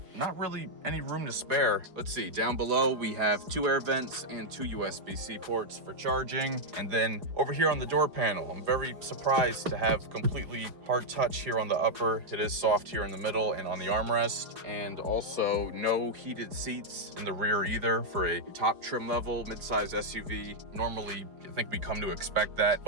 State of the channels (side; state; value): left; late; 5.0 ms